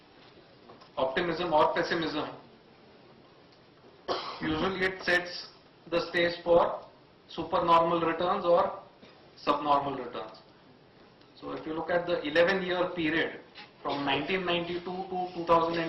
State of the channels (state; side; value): identical; both; correlation 1.00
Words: optimism or pessimism, usually it sets the stage for supernormal returns or subnormal returns. So if you look at the 11-year period from 1992 to